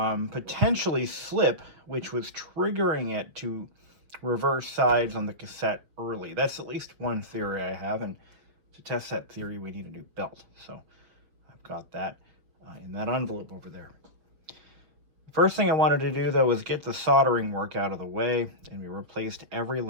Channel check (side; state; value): left; late; 6.3 ms